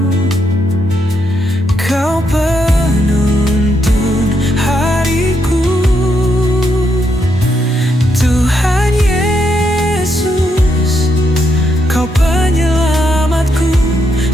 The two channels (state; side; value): normal; both; correlation 0.79